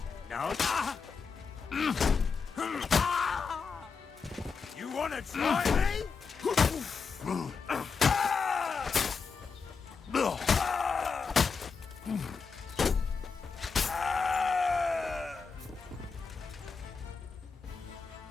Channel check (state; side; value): quieter; right; 5.3 dB